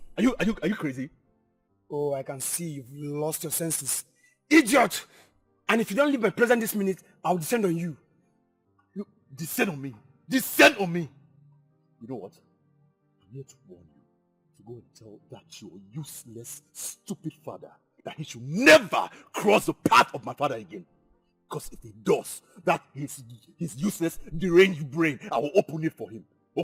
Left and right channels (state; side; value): identical; both; correlation 1.00